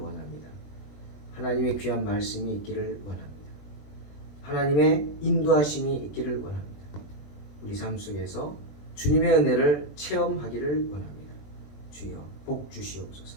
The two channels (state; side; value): late; right; 20 ms